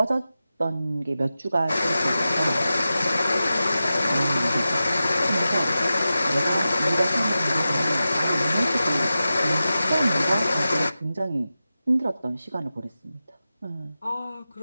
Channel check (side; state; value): both; inverted; correlation -0.93